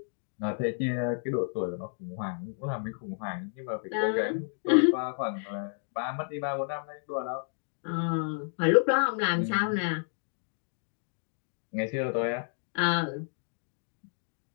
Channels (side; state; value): right; silent; digital silence